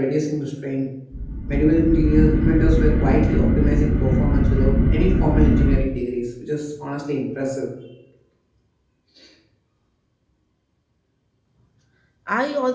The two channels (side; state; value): both; identical; correlation 1.00